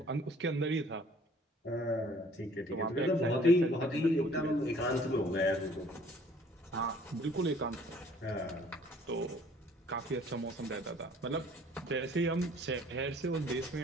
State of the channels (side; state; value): both; normal; correlation 0.56